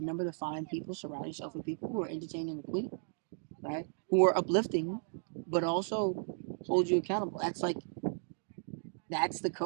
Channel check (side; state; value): left; silent; digital silence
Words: to find people, surround yourself with people who are entertaining the queen, right? Who are uplifting, but also hold you accountable. That's the